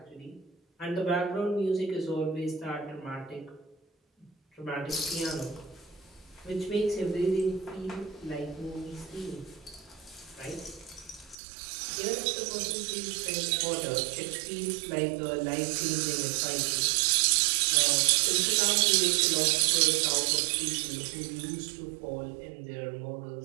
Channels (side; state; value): left; drops out; at 11.4 s